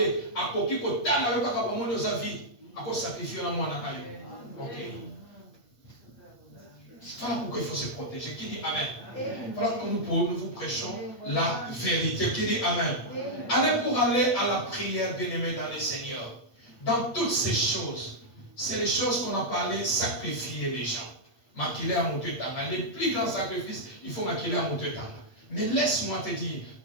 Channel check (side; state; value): right; late; 8.5 ms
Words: à quoi qui peut t'en aller quand on nous a vie, à quoi sacrifier la moi n'a ok. Voilà pourquoi il faut se protéger. Qui dit Amen? Voilà que nous vous prêchons la vérité. Qui dit Amen? Allez pour aller à la prière, bien-aimé dans le Seigneur. Dans toutes ces choses, c'est les choses qu'on a parlé, sacrifier les gens. Maquiller à mon tanga. Les plus grands sacrifices, il faut maquiller à mon tanga. Mais laisse-moi te dire